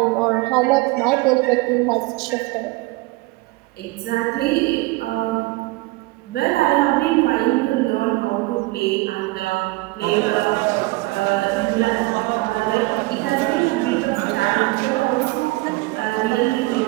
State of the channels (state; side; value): quieter; left; 21.7 dB